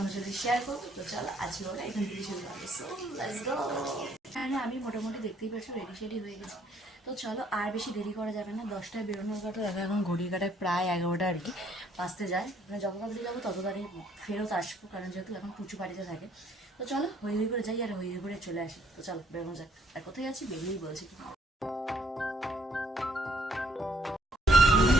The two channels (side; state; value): both; normal; correlation 0.66